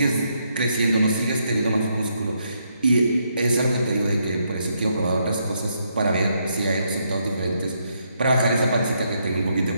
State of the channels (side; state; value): both; inverted; correlation -0.77